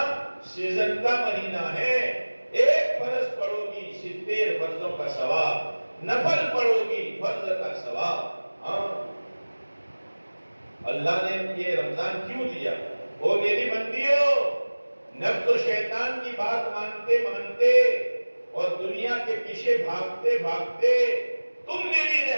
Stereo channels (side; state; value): both; inverted; correlation -1.00